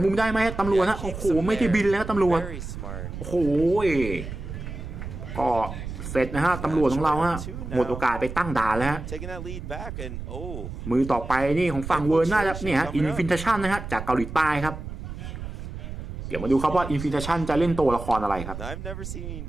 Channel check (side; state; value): right; noise; rumble, 8 dB below the sound